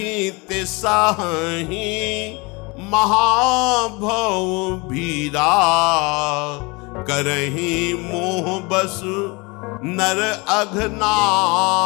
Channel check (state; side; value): quieter; right; 26.9 dB